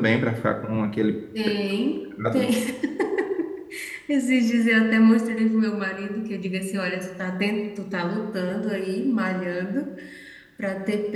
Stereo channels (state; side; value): identical; both; correlation 1.00